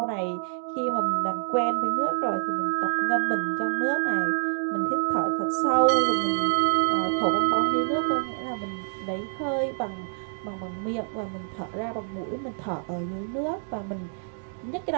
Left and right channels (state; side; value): silent; left; digital silence